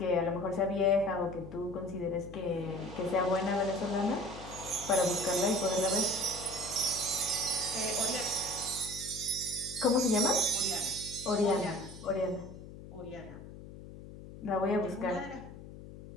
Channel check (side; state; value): left; noise; hum, 14 dB below the sound